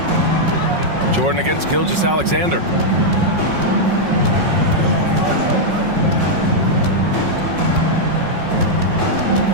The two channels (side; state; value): left; late; 5.5 ms